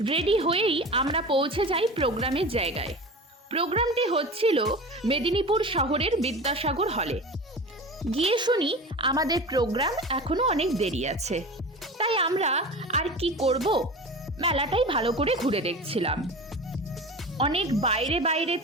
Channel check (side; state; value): both; normal; correlation 0.32